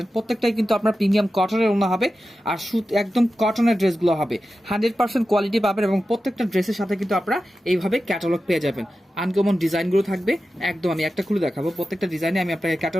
প্রত্যেকটাই কিন্তু আপনার প্রিমিয়াম কটনের ওড়না হবে আর সুত একদম কটনের ড্রেসগুলো হবে। 100% কোয়ালিটি পাবেন এবং প্রত্যেকটা ড্রেসের সাথে কিন্তু আপনারা এইভাবে ক্যাটালগ পেয়ে যাবেন। আনকমন ডিজাইনগুলো থাকবে একদম। আমি একটা খুলে দেখাবো, প্রত্যেকটা ডিজাইনে আমি আপনাকে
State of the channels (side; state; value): both; normal; correlation 0.92